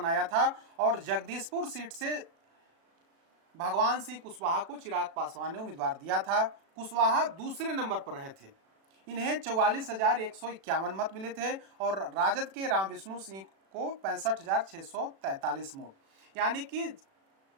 था और जगदीशपुर सीट से भगवान सिंह कुशवाहा को चिराग पासवान ने उम्मीदवार दिया था। कुशवाहा दूसरे नंबर पर रहे थे। इन्हें 44,151 मत मिले थे और राजद के राम विष्णु सिंह को 65,643 वोट, यानी कि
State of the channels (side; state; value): left; late; 36 ms